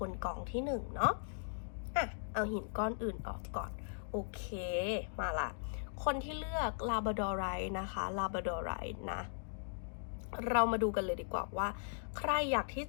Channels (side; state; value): right; silent; digital silence